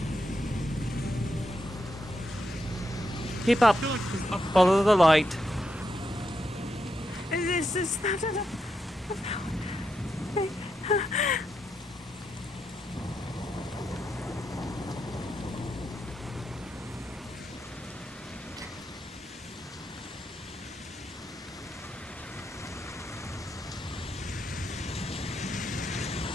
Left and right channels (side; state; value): both; normal; correlation 0.83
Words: Keep up. I feel like it was up. Follow the light. Is that